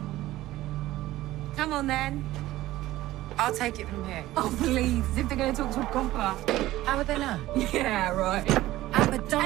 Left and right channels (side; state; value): left; quieter; 16.0 dB